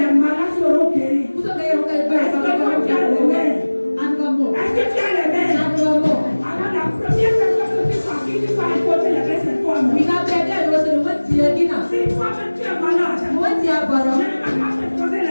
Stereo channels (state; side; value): inverted; both; correlation -1.00